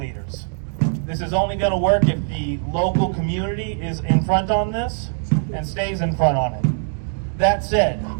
This is only going to work if the local community is in front on this and stays in front on it. That said,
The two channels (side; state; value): left; silent; digital silence